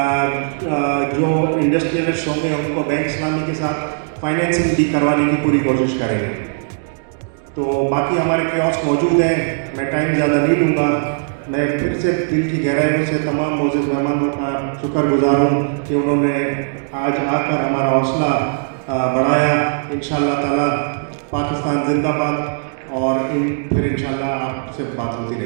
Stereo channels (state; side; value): silent; left; digital silence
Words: जो इंडस्ट्रियलिस्ट होंगे उनको बैंक इस्लामी के साथ फाइनेंसिंग भी करवाने की पूरी कोशिश करेंगे। तो बाकी हमारे कियोस्क मौजूद हैं, मैं टाइम ज़्यादा नहीं लूँगा। मैं फिर से दिल की गहराइयों से तमाम मोअज़्ज़ज़ मेहमानों का शुक्रगुज़ार हूँ कि उन्होंने आज आकर हमारा हौसला बढ़ाया। इंशाअल्लाह ताला पाकिस्तान जिंदाबाद, और फिर इंशाअल्लाह आपसे बात होती